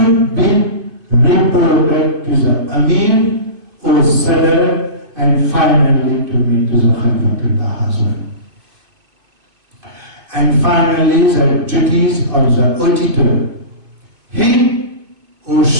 be reported to the Amir or Sadr, and finally to me, to the Khalifatullah as well. And finally, the duties of the auditor. He or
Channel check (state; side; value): late; left; 2.5 ms